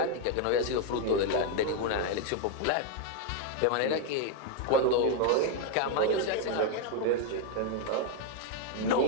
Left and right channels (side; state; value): both; different; correlation 0.01